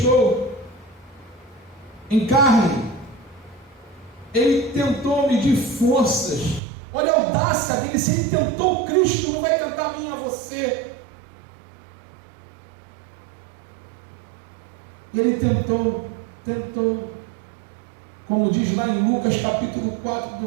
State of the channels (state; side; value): drops out; left; at 6.6 s